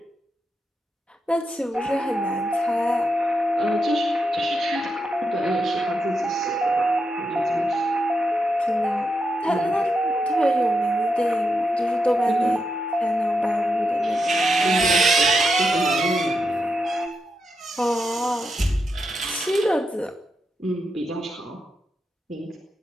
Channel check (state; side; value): normal; both; correlation 0.85